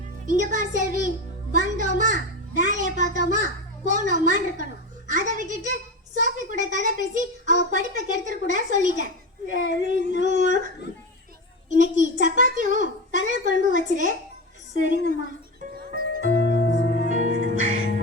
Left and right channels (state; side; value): normal; both; correlation 0.21